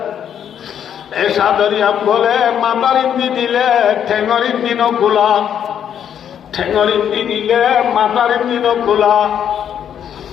এই সাদরিয়া বলে মাতার ইন্দি দিলে ঠেঙর ইন্দি নকুলা, ঠেঙর ইন্দি দিলে মাতার ইন্দি নকুলা।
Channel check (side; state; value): right; quieter; 9.0 dB